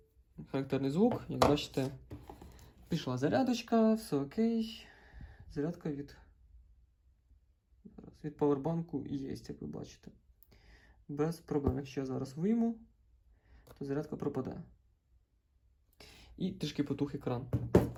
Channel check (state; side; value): identical; both; correlation 1.00